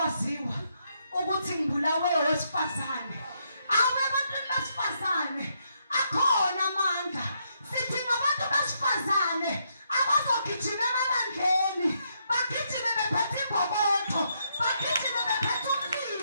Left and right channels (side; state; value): both; inverted; correlation -0.77